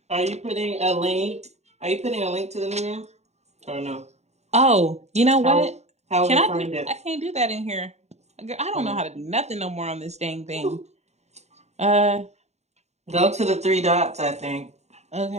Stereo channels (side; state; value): left; late; 0.32 ms